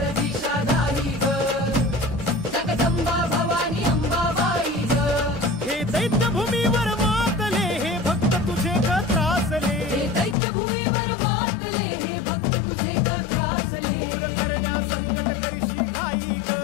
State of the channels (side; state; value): right; drops out; at 10.4 s